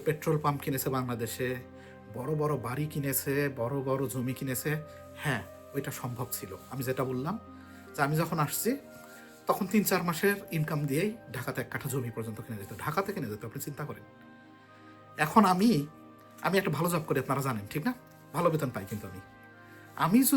পেট্রোল পাম্প কিনেছে বাংলাদেশে, বড় বড় বাড়ি কিনেছে, বড় বড় জমি কিনেছে। হ্যাঁ, ওইটা সম্ভব ছিল। আমি যেটা বললাম যে আমি যখন আসছি তখন 3-4 মাসের ইনকাম দিয়েই ঢাকাতে 1 কাঠা জমি পর্যন্ত কিনে যেত, ঢাকাতে কিনে যেত, আপনি চিন্তা করেন। এখন আমি একটা ভালো জব করি, আপনারা জানেন, ঠিক না? ভালো বেতন পাই, কিন্তু আমি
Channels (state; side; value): identical; both; correlation 1.00